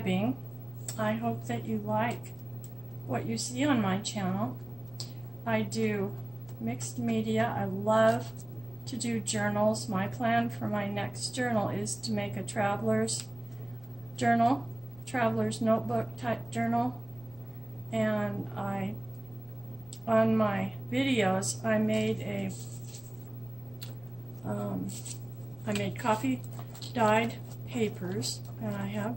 I hope that you like what you see on my channel. I do mixed media. I love to do journals. My plan for my next journal is to make a traveler's journal, traveler's notebook type journal. And on my videos, I made coffee dyed papers, and I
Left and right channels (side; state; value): left; noise; rumble, 24 dB below the sound